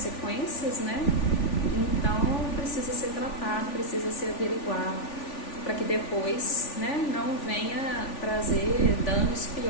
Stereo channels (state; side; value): late; right; 3.4 ms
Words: né, então precisa ser tratado, precisa ser averiguado, para que depois, né, não venha trazer danos